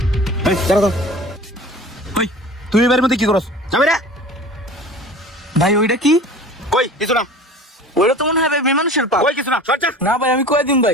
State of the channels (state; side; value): normal; both; correlation 0.41